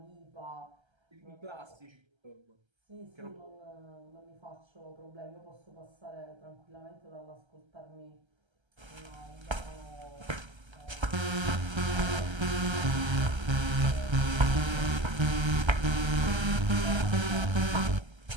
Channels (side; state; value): left; late; 1.3 ms